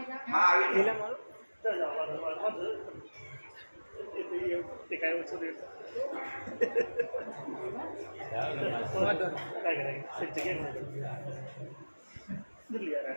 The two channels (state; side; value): inverted; both; correlation -1.00